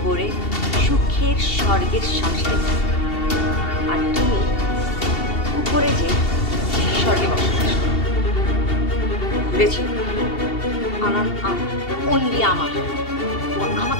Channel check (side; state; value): right; late; 2.7 ms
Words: করে সুখের স্বর্গের সংসারে, আর তুমি উপরে যে স্বর্গে বসবাস করো। বুঝেছি? আনান অনলি আমার, ও